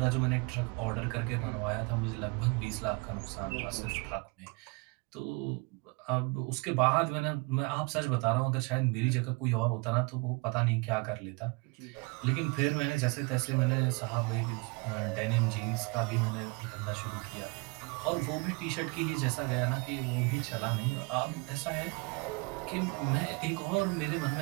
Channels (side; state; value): left; quieter; 28.5 dB